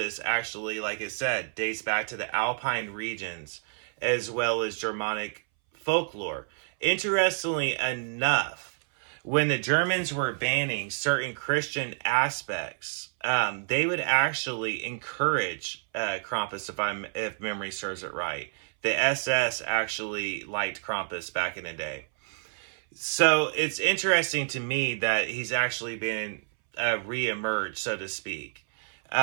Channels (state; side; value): silent; left; 59 dB below the other